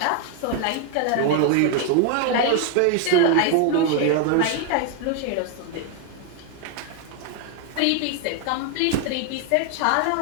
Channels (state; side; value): different; both; correlation 0.01